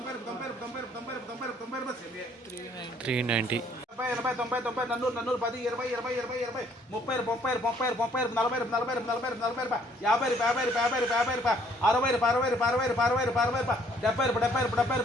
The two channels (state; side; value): normal; both; correlation 0.62